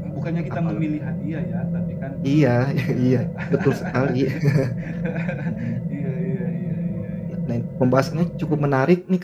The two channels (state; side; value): identical; both; correlation 1.00